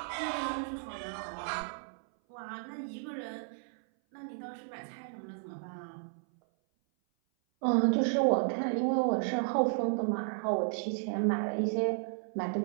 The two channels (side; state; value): left; silent; 56 dB below the other